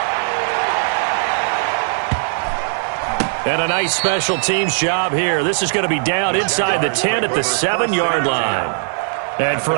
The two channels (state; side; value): silent; left; digital silence